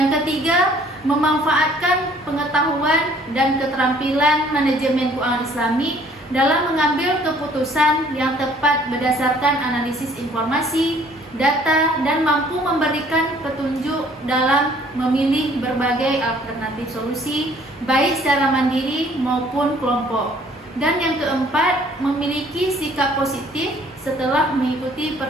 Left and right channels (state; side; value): normal; both; correlation 0.58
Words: ketiga, memanfaatkan pengetahuan dan keterampilan manajemen keuangan Islami dalam mengambil keputusan yang tepat berdasarkan analisis informasi, data, dan mampu memberikan petunjuk dalam memilih berbagai alternatif solusi, baik secara mandiri maupun kelompok. Dan yang keempat, memiliki sikap positif setelah mengikuti